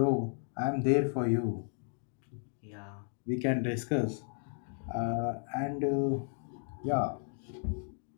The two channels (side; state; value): right; silent; 55 dB below the other